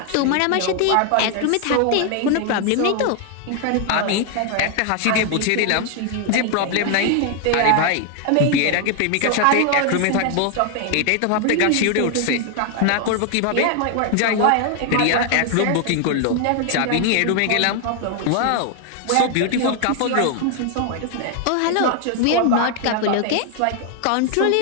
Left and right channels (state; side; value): different; both; correlation 0.00